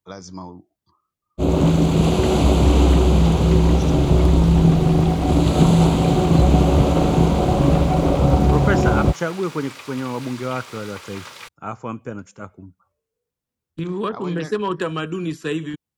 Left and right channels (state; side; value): identical; both; correlation 1.00